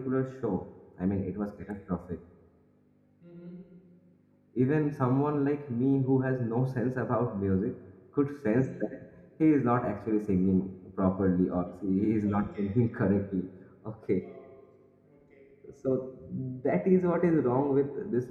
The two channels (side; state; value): both; identical; correlation 1.00